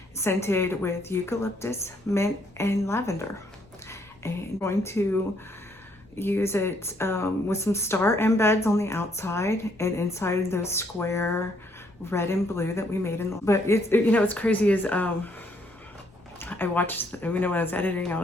scented with eucalyptus, mint, and lavender. And I'm going to use it with some star embeds on the outside and inside those square red and blue that we made in the, but it's, you know, what's crazy is I watched, you know, when I was editing, I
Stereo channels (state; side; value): normal; both; correlation 0.69